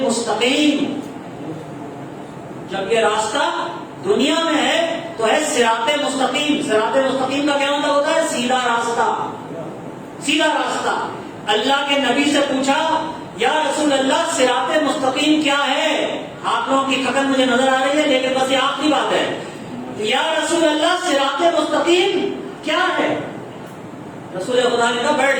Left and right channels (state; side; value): identical; both; correlation 1.00